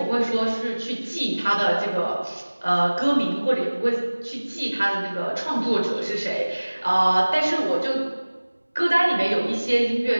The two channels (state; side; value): inverted; both; correlation -1.00